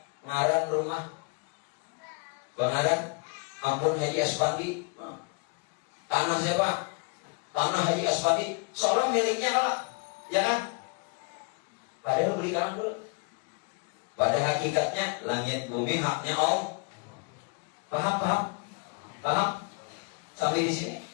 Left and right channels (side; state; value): right; quieter; 32.4 dB